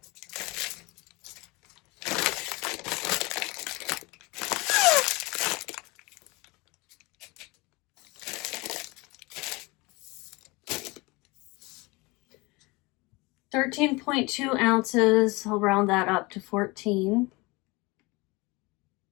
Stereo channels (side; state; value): right; quieter; 24.6 dB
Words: $13.2 ounces. I'll round that up to 14.